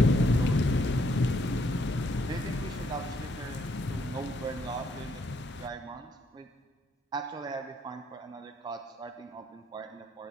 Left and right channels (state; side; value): normal; both; correlation 0.71